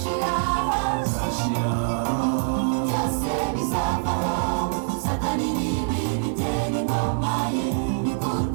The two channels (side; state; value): left; silent; digital silence